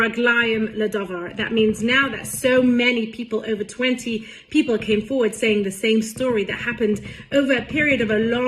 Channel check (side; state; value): both; identical; correlation 1.00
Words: ledavar. That means now that so many people, over 20 people came forward saying the same story that happened over a period of a